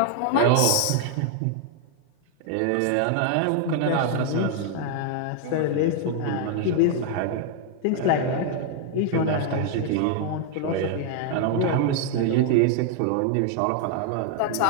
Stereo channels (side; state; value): both; different; correlation 0.00